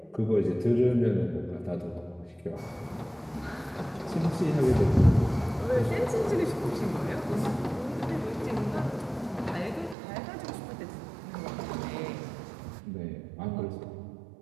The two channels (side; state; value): left; drops out; at 10.0 s